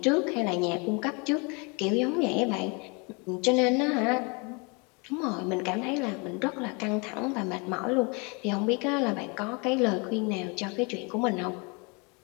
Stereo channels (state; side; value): quieter; right; 31.2 dB